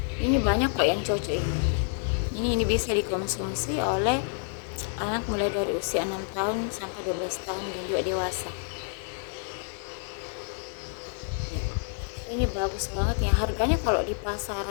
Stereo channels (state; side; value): silent; right; 56 dB below the other